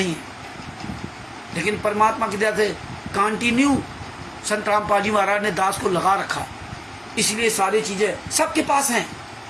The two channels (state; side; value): identical; both; correlation 1.00